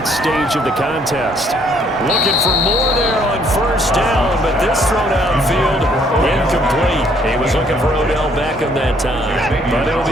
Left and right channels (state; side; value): normal; both; correlation 0.65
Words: stage of the contest. Looking for more there on 1st down, but this throw downfield He was looking for Odell Beckham that time, but it'll